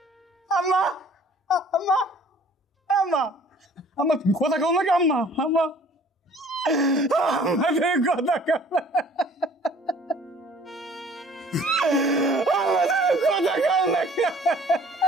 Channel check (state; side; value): normal; both; correlation 0.53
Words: আম্মা আম্মা আম্মা আম্মা তুমি কথা কও নাকি? আম্মা আম্মা আমাদের কথা কও, আমাদের কথা কও নাকি?